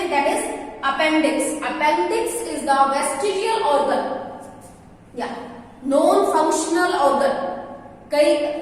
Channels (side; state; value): both; identical; correlation 1.00